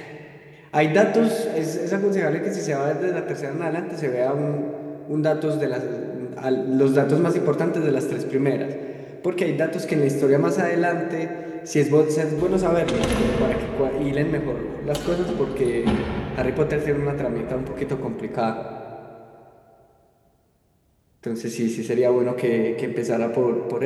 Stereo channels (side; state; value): both; identical; correlation 1.00